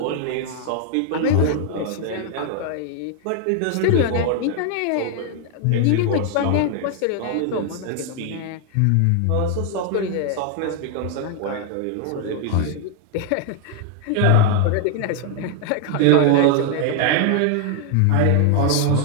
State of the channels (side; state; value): both; different; correlation 0.00